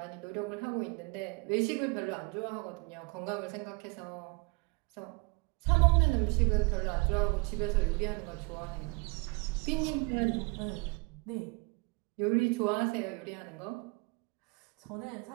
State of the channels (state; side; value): quieter; left; 29.1 dB